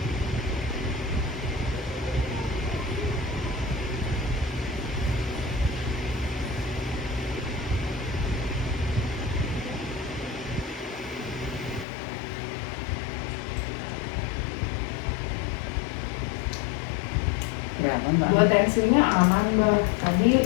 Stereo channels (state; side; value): drops out; right; at 11.9 s